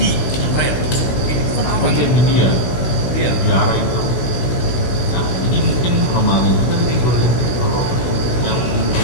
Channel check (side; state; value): right; late; 16 ms